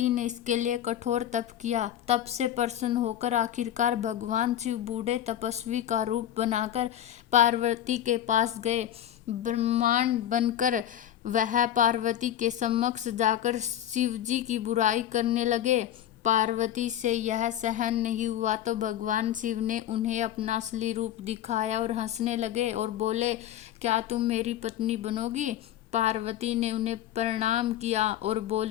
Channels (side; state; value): right; quieter; 11.3 dB